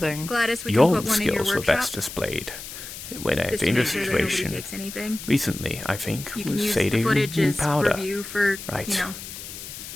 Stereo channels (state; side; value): noise; left; hiss, 11 dB below the sound